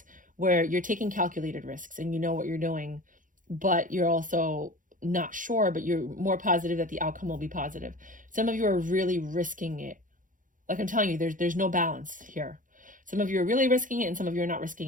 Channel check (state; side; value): late; left; 0.38 ms